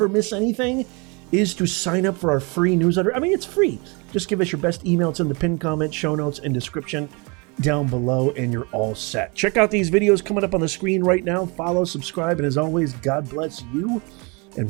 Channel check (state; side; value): quieter; left; 30.0 dB